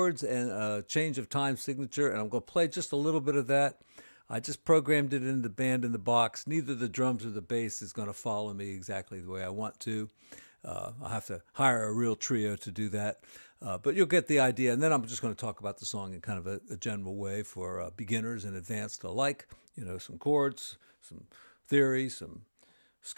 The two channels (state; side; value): inverted; both; correlation -1.00